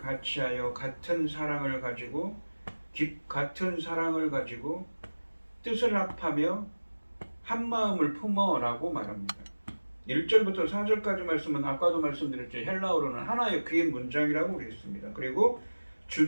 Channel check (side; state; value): both; inverted; correlation -1.00